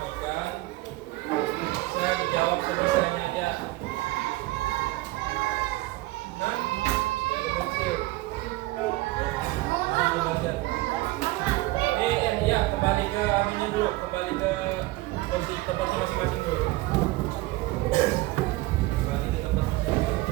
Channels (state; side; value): quieter; left; 19.4 dB